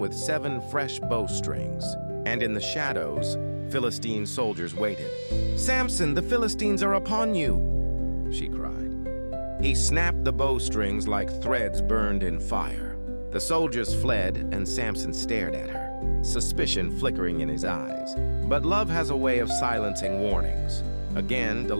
7 fresh bowstrings. And in the shadows, Philistine soldiers waited. "Samson, the Philistines are upon you!" she cried. He snapped the bowstrings like threads burned in fire. The soldiers fled, and Samson stared at her, suspicion flickering in his eyes. But love has a way of silencing warnings. Again,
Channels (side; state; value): both; inverted; correlation -1.00